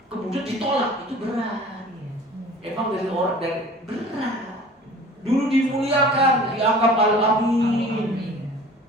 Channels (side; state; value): both; normal; correlation 0.45